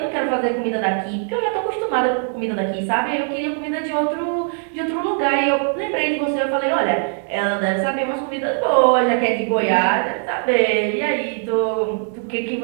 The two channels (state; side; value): silent; left; 63 dB below the other